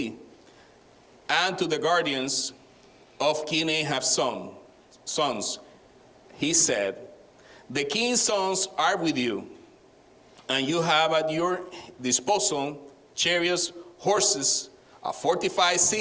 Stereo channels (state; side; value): identical; both; correlation 1.00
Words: and to the guardians of King Ahab's sons. He said, the king's sons are with you, and you have at your disposal chariots, horses, a fortified